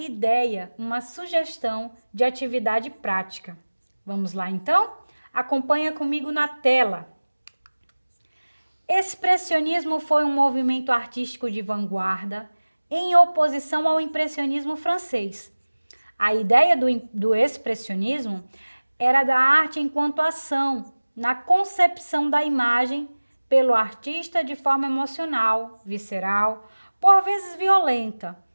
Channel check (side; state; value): both; inverted; correlation -1.00